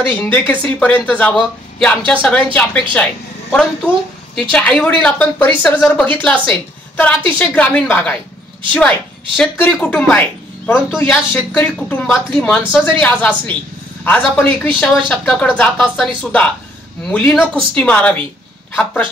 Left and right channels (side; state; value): both; normal; correlation 0.65